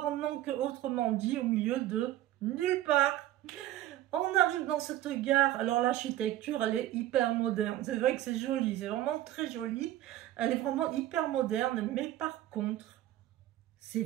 Donc, autrement dit, au milieu de nulle part. On arrive dans cette gare. Alors l'architecture, elle est hyper moderne. C'est vrai que c'est joli, c'est vraiment très joli. Elle est vraiment hyper moderne, mais par contre, c'est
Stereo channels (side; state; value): left; quieter; 14.0 dB